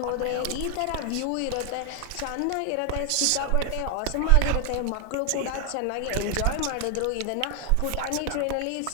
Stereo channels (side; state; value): both; different; correlation 0.00